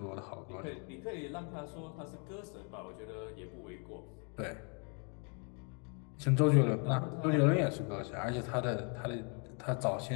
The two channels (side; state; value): right; quieter; 37.6 dB